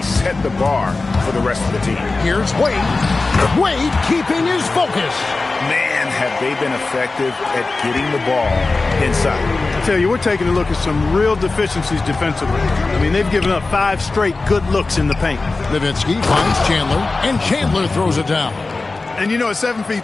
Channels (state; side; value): quieter; right; 3.6 dB